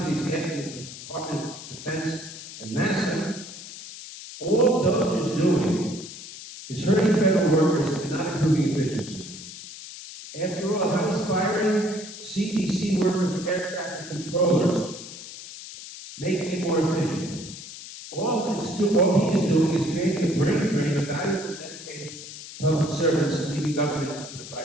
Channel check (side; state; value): left; noise; hiss, 13 dB below the sound